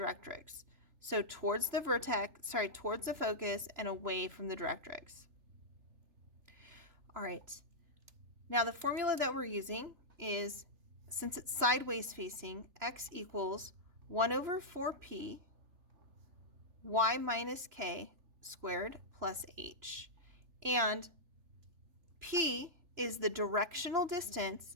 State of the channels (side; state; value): left; late; 3.0 ms